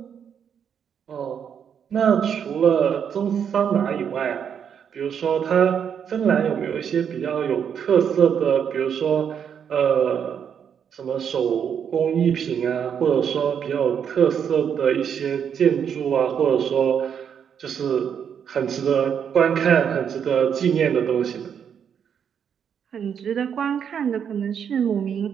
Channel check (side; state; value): left; quieter; 7.9 dB